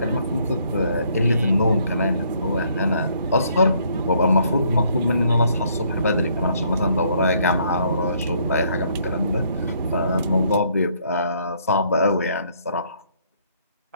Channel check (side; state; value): both; inverted; correlation -0.67